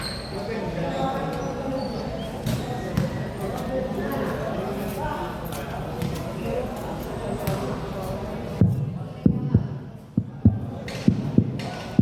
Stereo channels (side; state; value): both; identical; correlation 1.00